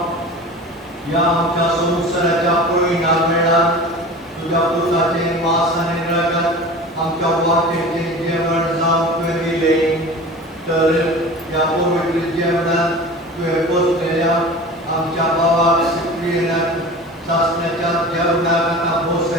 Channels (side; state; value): both; normal; correlation 0.36